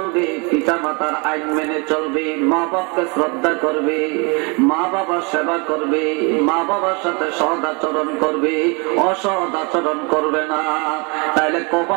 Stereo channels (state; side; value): quieter; left; 31.3 dB